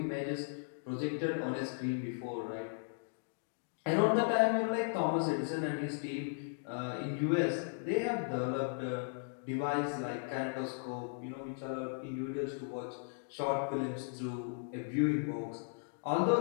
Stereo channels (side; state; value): right; silent; digital silence